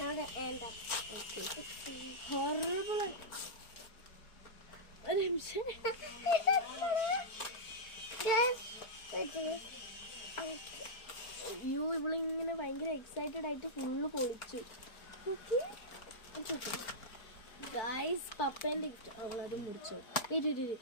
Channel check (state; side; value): late; right; 4.4 ms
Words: ഹൊറബിൾ. ഒരു നിമിഷം, ഇവളിങ്ങനെ ഭയങ്കര എക്സൈറ്റഡ് ആയിട്ട് ഫുള്ള് പൊളിച്ചു. ഗായ്സ്, പപ്പേന്റെ ഗിഫ്റ്റ്. അവളത് മുറിച്ചോ.